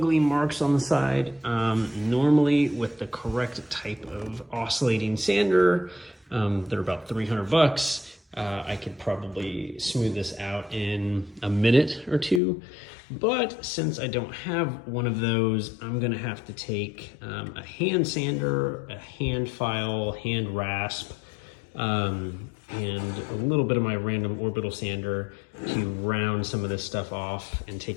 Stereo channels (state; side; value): drops out; right; at 12.4 s